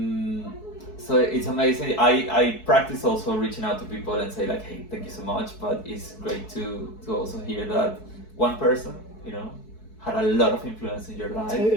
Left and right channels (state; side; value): late; right; 4.6 ms